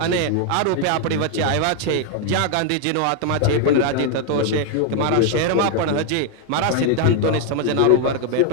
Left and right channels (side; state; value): both; different; correlation 0.01